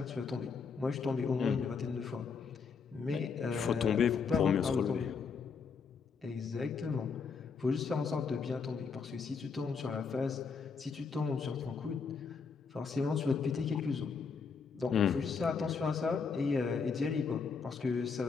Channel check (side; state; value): right; quieter; 5.4 dB